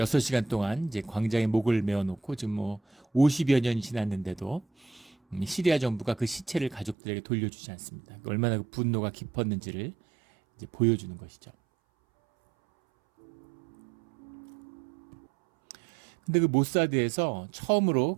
동안 이제 광장에 목을 메어놓고 지금 뭐 50여 년이 지났는데도 시리아 정부가 그 시체를 가족들에게 돌려주지 않습니다. 얼마나 그 분노가 깊었는지를 이제 보여주는 것이죠. 근데 그 모사드에서 처음으로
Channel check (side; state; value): left; drops out; at 7.0 s